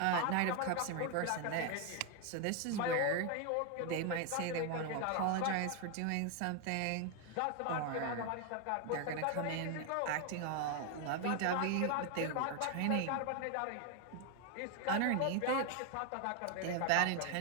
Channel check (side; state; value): both; different; correlation 0.01